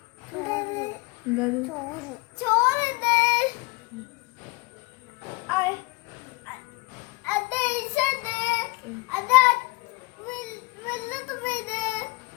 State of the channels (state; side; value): quieter; right; 25.6 dB